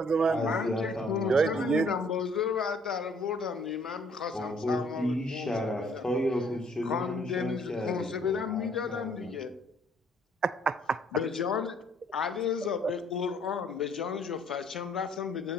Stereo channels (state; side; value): normal; both; correlation 0.61